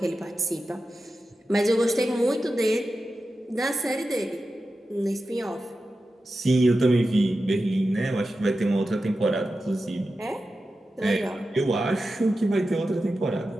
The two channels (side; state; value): both; normal; correlation 0.92